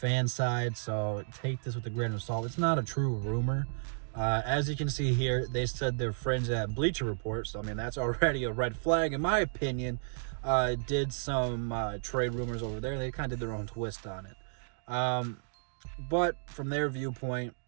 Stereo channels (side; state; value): left; silent; digital silence